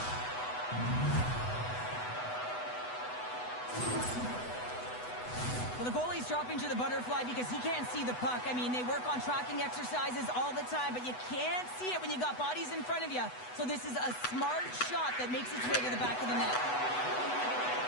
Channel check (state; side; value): late; right; 8.1 ms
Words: Well, the goalie's dropping to the butterfly because he can't see the puck. I mean, they work on tracking exercises all the time, but you can't see it when you got bodies in front of you. So this is a smart shot that makes its way to the back of the net.